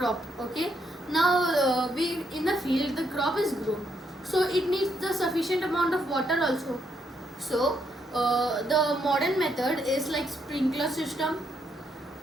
Okay, now we in the field the crop is grown, so it needs the sufficient amount of water also. So the modern method is like sprinkler system.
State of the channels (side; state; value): both; normal; correlation 0.76